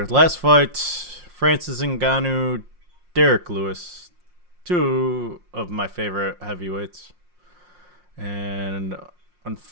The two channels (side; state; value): left; late; 5.6 ms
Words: Last fight, Francis Ngannou, Derek Lewis, two of my favorite heavyweights. And